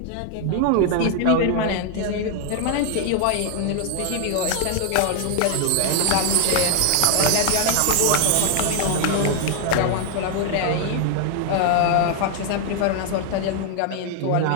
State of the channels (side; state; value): both; different; correlation 0.00